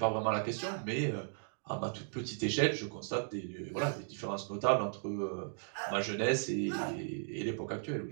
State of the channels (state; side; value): silent; left; digital silence